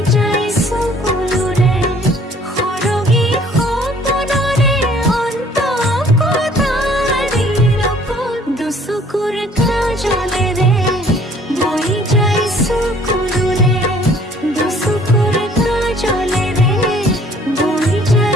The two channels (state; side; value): normal; both; correlation 0.57